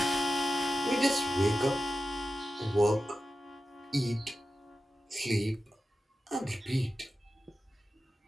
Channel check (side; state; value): both; normal; correlation 0.92